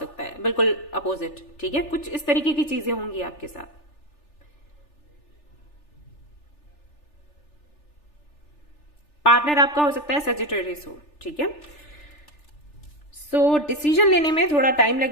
है, बिल्कुल अपोजिट, ठीक है, कुछ इस तरीके की चीजें होंगी आपके साथ। पार्टनर आपका हो सकता है सजिटेरियस हो, ठीक है। सो डिसीजन लेने में थोड़ा टाइम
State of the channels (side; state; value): right; late; 3.4 ms